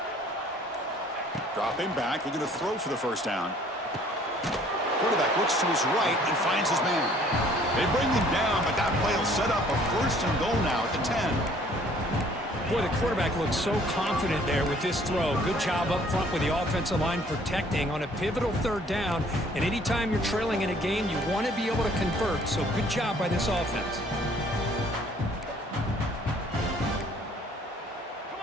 Dropping back, looking to throw for the first down. Quarterback looks to his right and finds his man. They bring him down, but that play will set up a 1st and goal now at the 10. Boy, the quarterback looks so confident there with this throw. Good job up front with the offensive line protecting on a pivotal 3rd down. And anytime you're trailing in a game, you want to be able to convert. So good job by this offense. Come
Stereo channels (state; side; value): normal; both; correlation 0.58